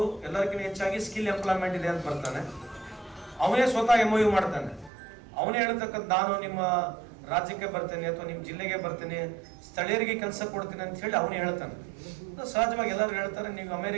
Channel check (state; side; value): drops out; left; at 4.9 s